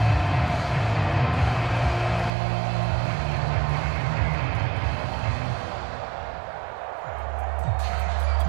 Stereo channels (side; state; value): left; drops out; at 2.3 s